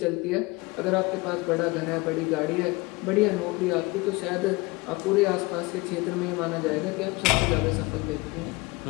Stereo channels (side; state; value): right; quieter; 23.9 dB